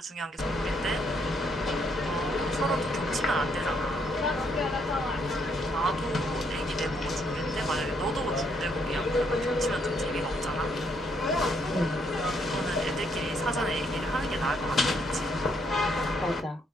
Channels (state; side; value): normal; both; correlation 0.72